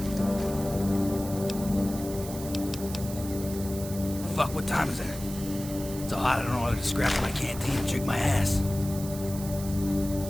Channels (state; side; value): noise; right; hiss, 12 dB below the sound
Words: Fuck, what time is it? So hot I don't know whether to scrap my canteen or drink my ass.